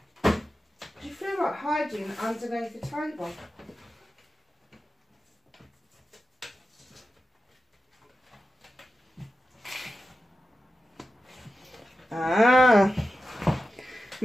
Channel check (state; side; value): normal; both; correlation 0.92